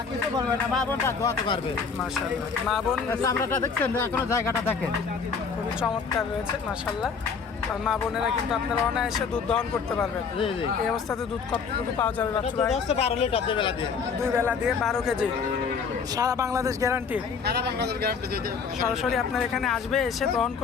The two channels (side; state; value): right; quieter; 5.7 dB